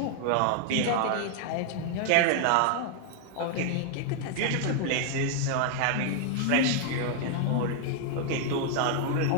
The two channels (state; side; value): different; both; correlation 0.00